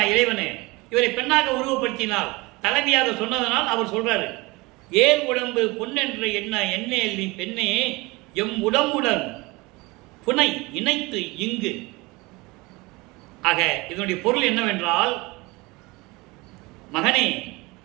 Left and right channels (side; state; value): left; quieter; 23.5 dB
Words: இறைவனே? இவரை பெண்ணாக உருவப்படுத்தினால், தலைவியாக சொன்னதனால் அவர் சொல்றாரு, ஏர் உடம்பு பொன்னென்று எண்ணேல் நீ பெண்ணே, எம் உடம்புடன் புனை இணைத்து இங்கு. ஆக இதனுடைய பொருள் என்னவென்றால், மகனே